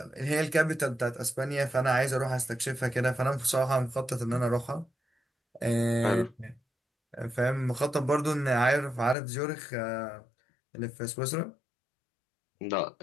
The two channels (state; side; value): drops out; right; at 9.2 s